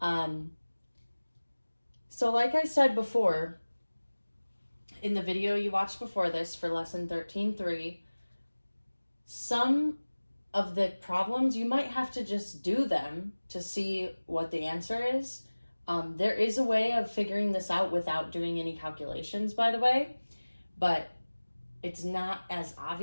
So like I said before, in the video you watched before this for lesson 13.3, some of the problems you might have to just do them to see what the answer is. There is a way of figuring this out without doing any calculations, by the way, but it's not as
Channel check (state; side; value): inverted; both; correlation -1.00